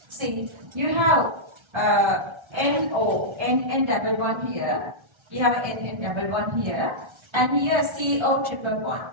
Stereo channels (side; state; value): left; late; 1.3 ms